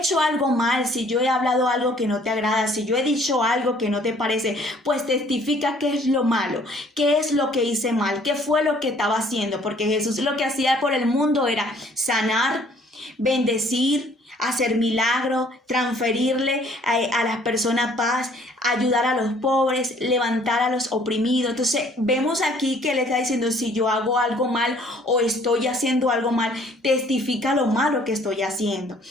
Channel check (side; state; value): both; normal; correlation 0.58